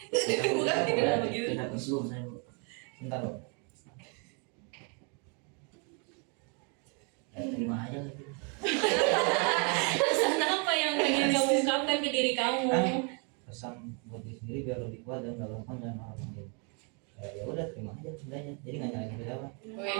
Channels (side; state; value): left; quieter; 36.4 dB